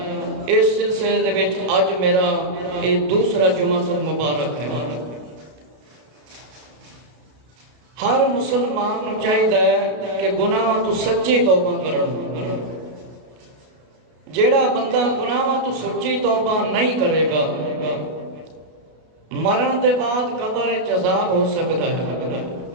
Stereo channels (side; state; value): left; late; 32 ms